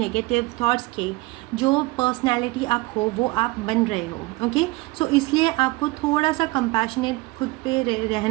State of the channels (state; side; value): quieter; left; 22.2 dB